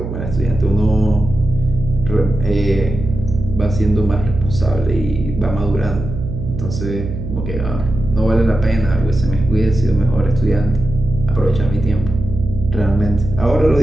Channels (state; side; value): noise; right; hum, 7 dB below the sound